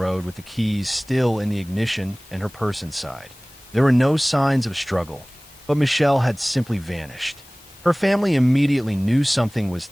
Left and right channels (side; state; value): left; noise; hiss, 24 dB below the sound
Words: with the keys still in the ignition and her purse inside. There were no signs of struggle, but Michelle had simply vanished. Her family immediately knew something was